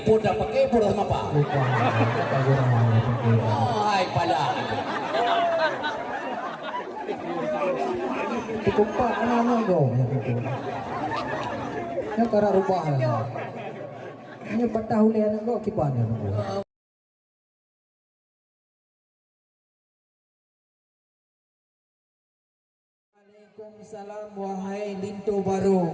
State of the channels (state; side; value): identical; both; correlation 1.00